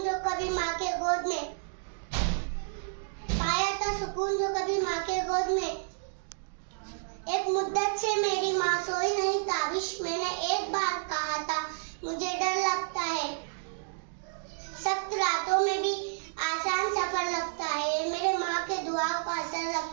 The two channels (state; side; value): silent; left; digital silence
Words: जो कभी माँ के गोद में, पाया था सुकून जो कभी माँ के गोद में। एक मुद्दत से मेरी माँ सोई नहीं ताबिश, मैंने एक बार कहा था मुझे डर लगता है। सख्त रातों में भी आसान सफर लगता है, मेरे माँ के दुआओं का असर